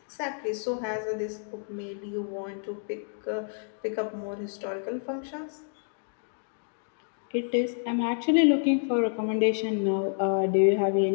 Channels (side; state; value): right; silent; digital silence